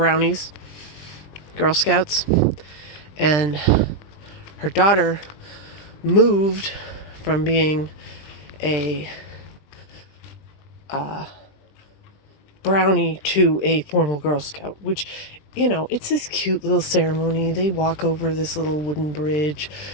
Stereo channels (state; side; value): late; right; 20 ms